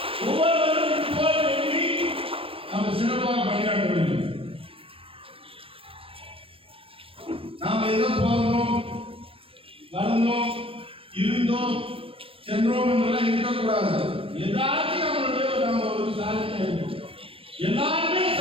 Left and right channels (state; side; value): late; left; 0.27 ms